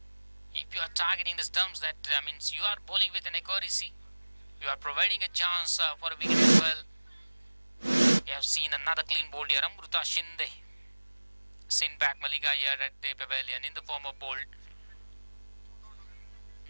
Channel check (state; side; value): inverted; both; correlation -1.00